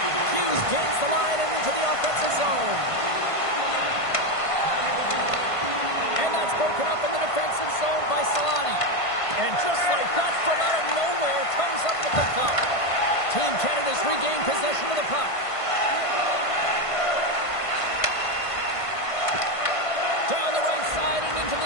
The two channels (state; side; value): late; right; 1.5 ms